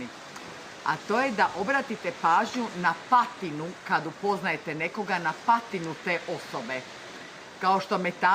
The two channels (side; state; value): both; identical; correlation 1.00